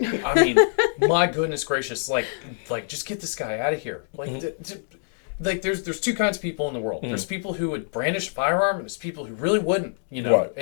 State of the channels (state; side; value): silent; right; 62 dB below the other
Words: I mean, my goodness gracious! Like, just get this guy out of here. Like, there's two kinds of people in the world. There's people who would brandish a firearm, and there's people who really wouldn't. Right.